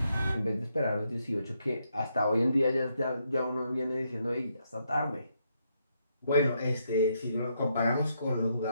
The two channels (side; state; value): both; inverted; correlation -0.77